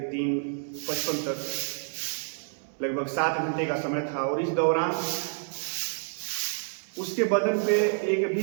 3:55 तक लगभग 7 घंटे का समय था और इस दौरान उसके बदन पे एक भी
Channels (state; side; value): silent; left; digital silence